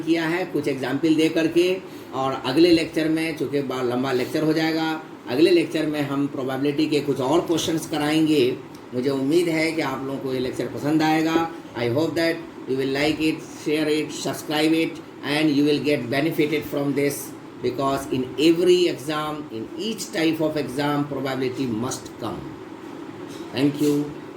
किया है कुछ एग्जाम्पल दे करके, और अगले लेक्चर में, चूँकि लंबा लेक्चर हो जाएगा, अगले लेक्चर में हम प्रोबेबिलिटी के कुछ और क्वेश्चंस कराएंगे। मुझे उम्मीद है कि आप लोगों को ये लेक्चर पसंद आएगा। I hope that you will like it, share it, subscribe it, and you will get benefited from this, because in every exam, in each type of exam, probability must come. Thank you.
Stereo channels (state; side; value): identical; both; correlation 1.00